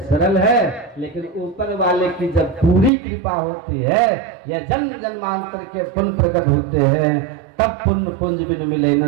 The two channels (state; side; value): drops out; left; at 2.9 s